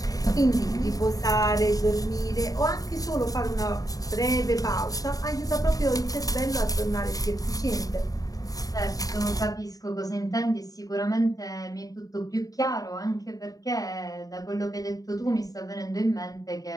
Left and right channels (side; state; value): right; late; 0.18 ms